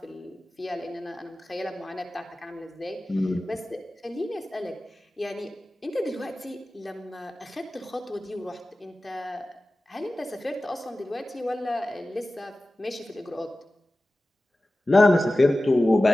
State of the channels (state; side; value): normal; both; correlation 0.96